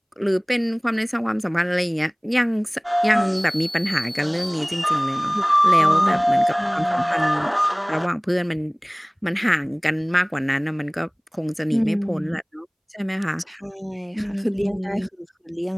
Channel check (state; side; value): identical; both; correlation 1.00